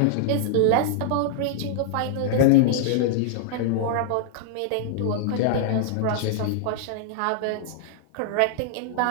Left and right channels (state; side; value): different; both; correlation -0.01